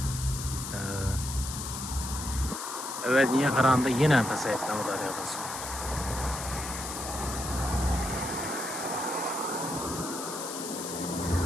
Evvelgiga qaraganda yana pasayibdi Amudaryo'da suv.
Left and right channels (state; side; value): noise; left; hiss, 7 dB below the sound